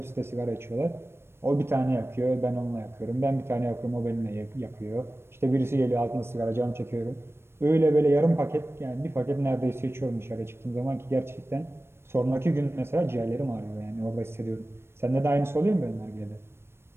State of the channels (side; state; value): left; late; 0.12 ms